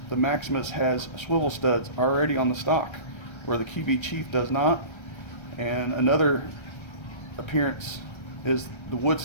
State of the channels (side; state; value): right; late; 1.3 ms